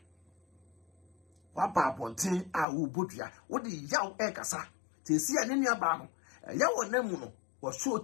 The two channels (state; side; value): drops out; right; at 2.7 s